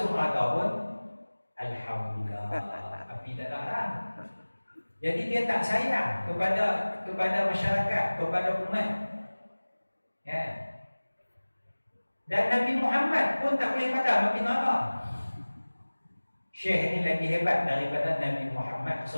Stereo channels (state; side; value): inverted; both; correlation -1.00